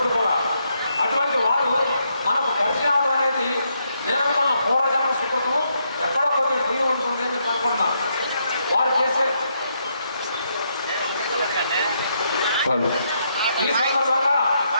కూడా. అటువంటి వారు మనకు పరిచయం అవడం అనేది నేను అనుకున్న పూర్వజన్మ సుకృతం ఎక్కడో కొద్దిగా పుణ్యం ఉంటుంది అని చెప్పి అనుకుంటున్నాను. వారు చేసే ఈ సందర్భంగా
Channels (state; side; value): inverted; both; correlation -0.77